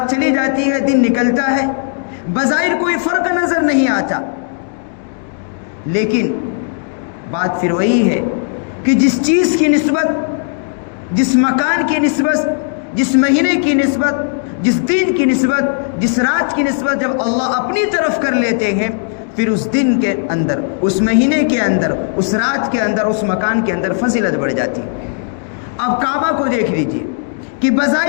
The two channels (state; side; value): silent; right; digital silence